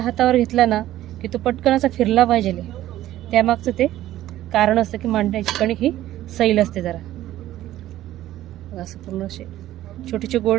हातावर घेतला ना की तो पटकन असा फिरला पाहिजे, त्यामागचं ते कारण असतं की मांड्याची कणिक ही सैल असते जरा। असं पूर्ण असे छोटे छोटे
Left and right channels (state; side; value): quieter; left; 14.0 dB